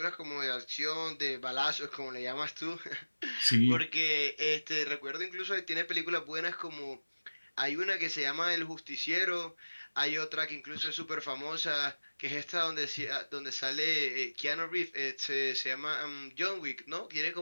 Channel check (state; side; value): inverted; both; correlation -1.00